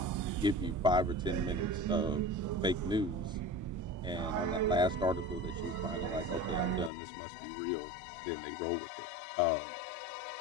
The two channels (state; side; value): drops out; right; at 6.9 s